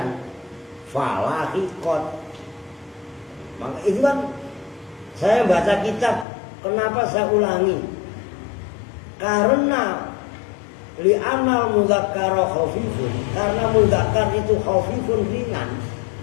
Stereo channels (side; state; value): right; drops out; at 6.2 s